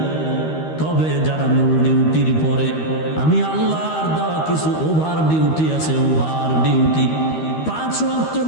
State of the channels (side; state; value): right; late; 13 ms